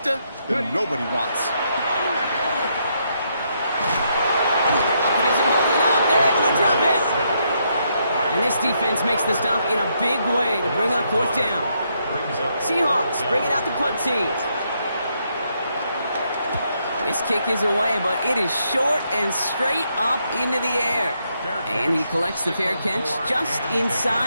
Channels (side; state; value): both; inverted; correlation -0.77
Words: that nobody wants. It isn't holding up. They're able to drop it. And this defense makes the stop in a big way to bring up fourth down. Seahawks bring it out the punt team. This kick is away, but it is short and straight up into the air. And he collects the fair catch just